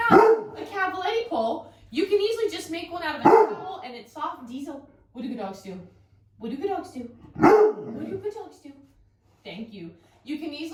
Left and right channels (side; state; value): both; identical; correlation 1.00